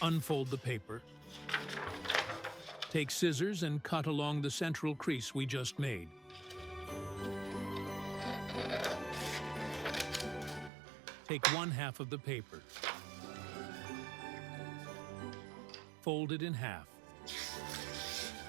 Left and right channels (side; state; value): left; drops out; at 10.7 s